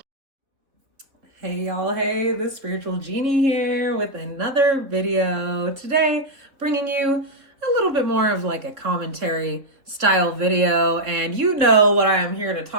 y'all, hey, the Spiritual Genie here with another video. Today, bringing you a little bit more of like a commentary style video, and you know what I am here to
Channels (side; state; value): left; late; 3.5 ms